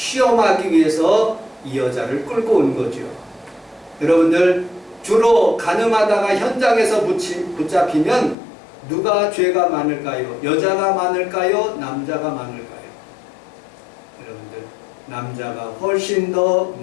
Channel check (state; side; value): drops out; right; at 8.3 s